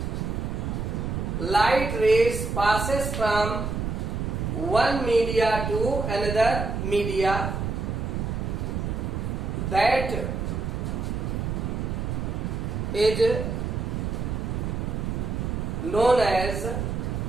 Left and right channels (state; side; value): noise; right; rumble, 2 dB below the sound